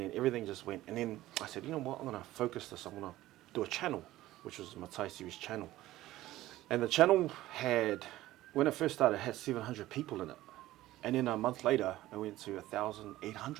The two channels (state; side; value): quieter; left; 15.8 dB